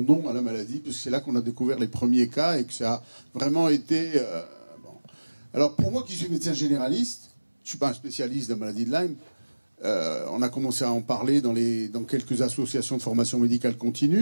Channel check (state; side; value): inverted; both; correlation -1.00